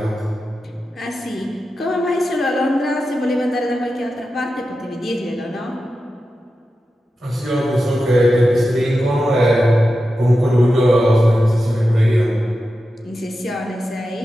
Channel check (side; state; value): both; normal; correlation 0.91